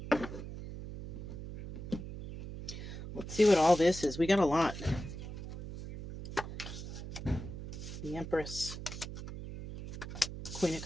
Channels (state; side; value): noise; right; hum, 9 dB below the sound